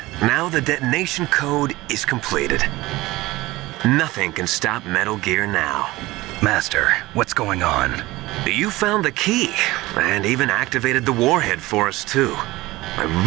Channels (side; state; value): left; quieter; 19.3 dB